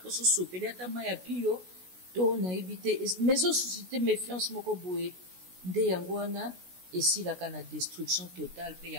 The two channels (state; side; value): late; left; 16 ms